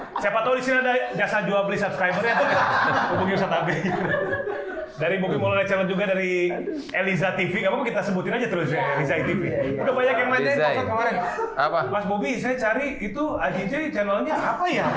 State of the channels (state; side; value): identical; both; correlation 1.00